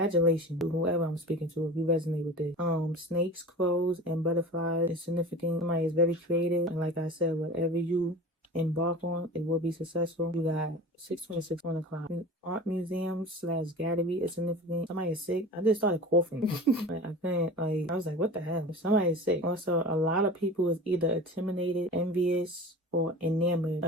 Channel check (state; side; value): normal; both; correlation 0.36